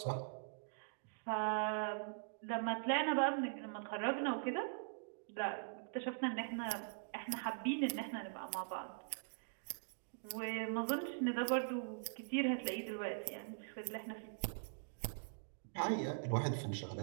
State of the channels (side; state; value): left; silent; digital silence